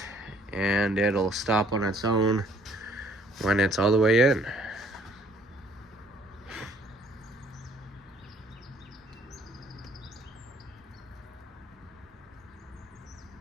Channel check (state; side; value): normal; both; correlation 0.61